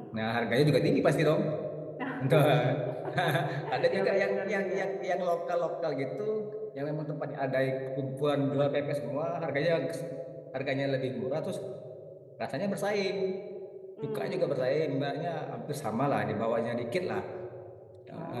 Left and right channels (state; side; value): identical; both; correlation 1.00